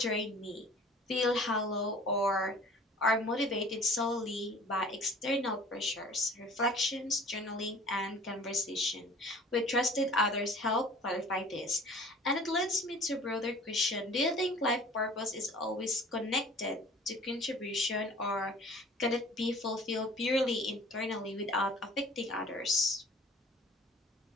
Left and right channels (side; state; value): both; normal; correlation 0.48